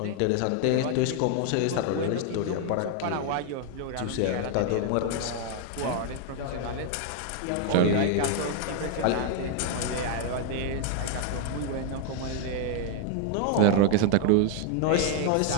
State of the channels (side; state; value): both; different; correlation 0.01